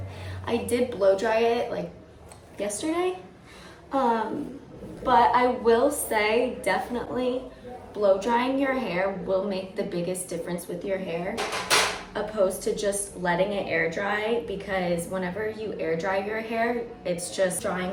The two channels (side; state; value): both; identical; correlation 1.00